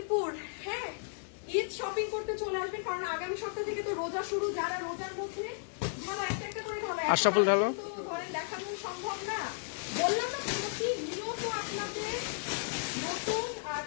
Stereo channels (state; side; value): silent; right; digital silence